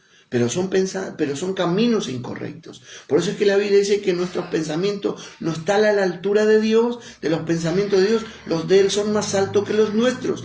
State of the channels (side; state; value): both; identical; correlation 1.00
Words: pero son caminos incorrectos. Por eso es que la Biblia dice que nuestros pensamientos no están a la altura de Dios, de los pensamientos de Dios. Los de Él son más altos que los nuestros.